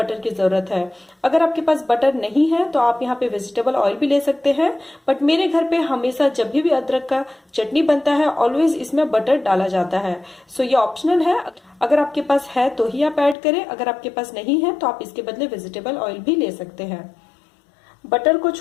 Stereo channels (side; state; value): right; drops out; at 13.4 s